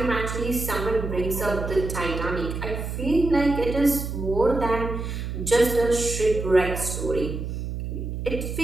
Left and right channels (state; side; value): noise; right; hum, 5 dB below the sound